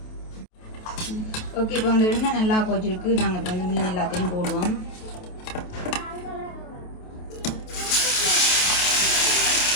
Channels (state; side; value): late; right; 28 ms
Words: ஓகே இப்போ வந்து எண்ணெய் நல்லா கொச்சிருக்கு. நாங்கள் இப்போ வந்து மீன் எல்லாத்தையும் போடுவோம்.